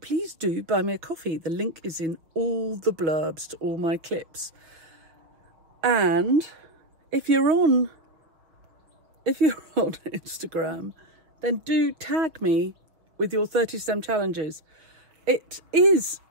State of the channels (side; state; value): left; late; 6.0 ms